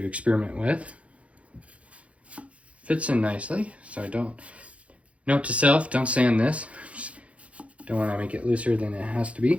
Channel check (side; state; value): left; late; 0.063 ms